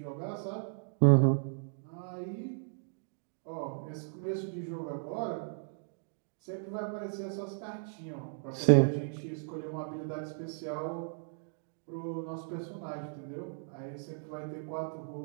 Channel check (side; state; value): left; silent; digital silence